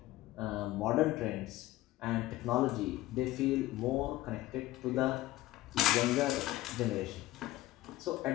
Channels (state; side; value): quieter; right; 16.6 dB